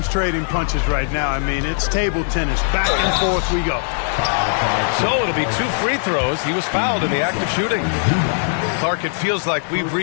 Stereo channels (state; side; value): silent; right; digital silence